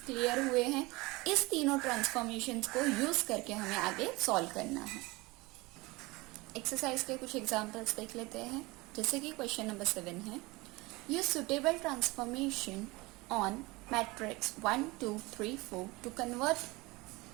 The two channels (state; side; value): quieter; left; 22.9 dB